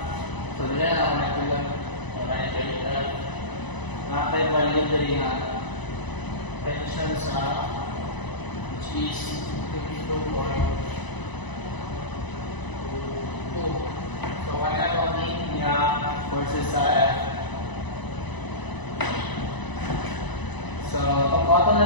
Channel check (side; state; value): right; late; 1.0 ms